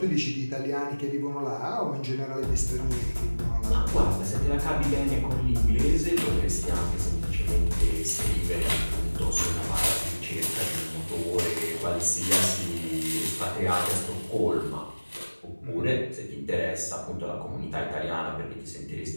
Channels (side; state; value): both; inverted; correlation -1.00